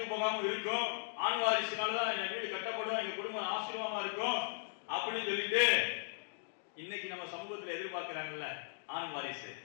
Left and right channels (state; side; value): silent; right; digital silence